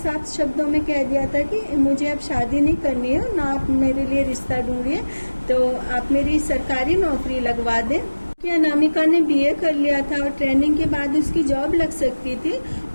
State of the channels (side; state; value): both; inverted; correlation -1.00